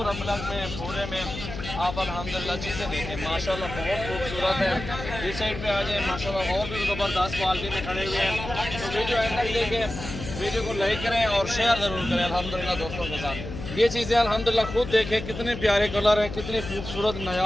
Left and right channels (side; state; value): left; noise; hum, 8 dB below the sound